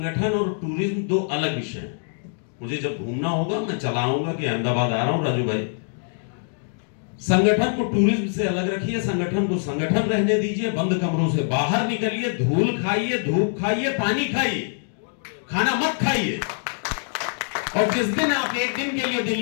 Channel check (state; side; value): silent; right; digital silence